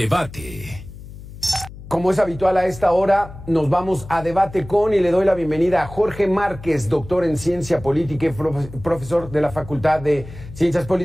Como es habitual a esta hora, nos vamos a debate con y le doy la bienvenida a Jorge Márquez, doctor en Ciencia Política y profesor de la Facultad de Ciencias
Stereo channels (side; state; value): left; noise; hum, 15 dB below the sound